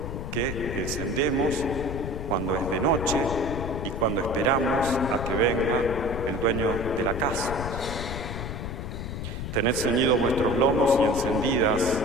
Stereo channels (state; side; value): noise; left; rumble, 5 dB below the sound